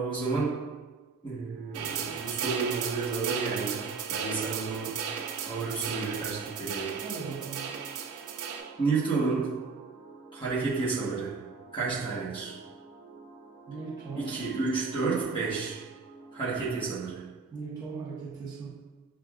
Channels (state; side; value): quieter; left; 4.5 dB